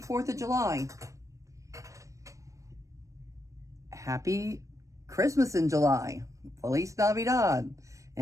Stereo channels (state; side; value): late; left; 0.15 ms